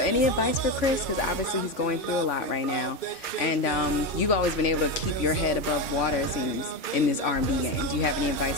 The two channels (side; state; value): right; late; 2.3 ms